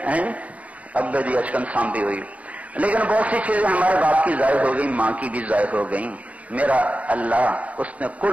ہیں، ابے دی اشکن سانبھی ہوئی. لیکن بہت سی چیزیں ہمارے باپ کی ضائع ہو گئی، ماں کی بھی ضائع ہو گئی. میرا اللہ اس نے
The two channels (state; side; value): late; left; 0.068 ms